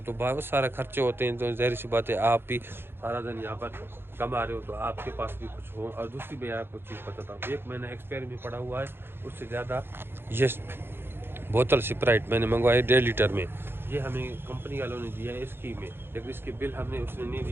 तो बहुत सारे खर्चे होते हैं। तो ज़ाहिर सी बात है, आप भी सारा दिन यहाँ पर कमा रहे हो तो आपके पास भी कुछ हो। और दूसरी मैं आपको चीज़ बताता हूँ, 1 महीना एक्सपायर में पड़ा हुआ है, उससे ज़्यादा ये बोतल स्प्राइट मैंने मंगवाई 1.5 लीटर में, ये हमें कंपनी वालों ने दिया है स्कीम में, लेकिन इसके बिल हमने उसने नहीं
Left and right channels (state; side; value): late; left; 0.11 ms